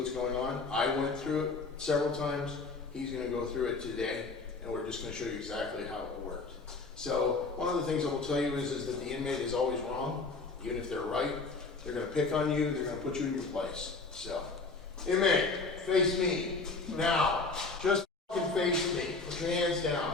going on. I went through it several times. He's going to go through it today, and we're just going to show you exactly how it worked. So one of the things I will tell you is that the inmate is always wrong. Even if they're right, they're going to pick on you. They're going to put you in your place. So, inmate, face me. Now, just fucking face me. Put your hands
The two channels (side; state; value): right; quieter; 3.9 dB